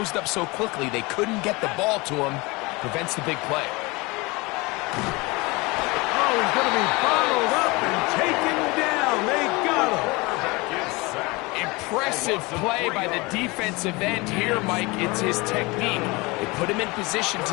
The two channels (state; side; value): quieter; right; 24.7 dB